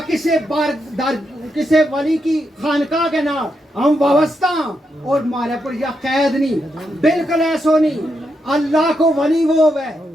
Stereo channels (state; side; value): normal; both; correlation 0.82